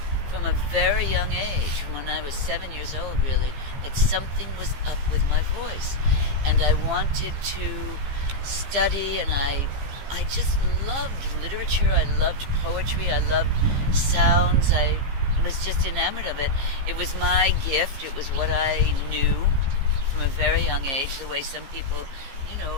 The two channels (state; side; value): late; left; 15 ms